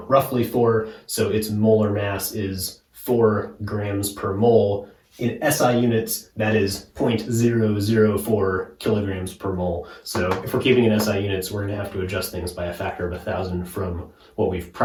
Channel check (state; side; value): identical; both; correlation 1.00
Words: roughly 4, so its molar mass is 4 grams per mole, In SI units, that is 0.004 kilograms per mole. So if we're keeping in SI units, we're going to have to adjust things by a factor of 1,000 from what we've